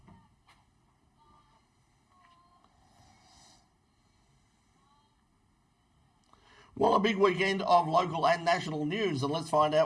Well, a big weekend of local and national news, and let's find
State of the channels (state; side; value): identical; both; correlation 1.00